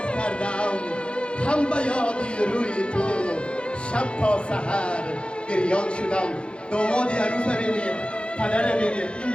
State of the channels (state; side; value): late; right; 0.057 ms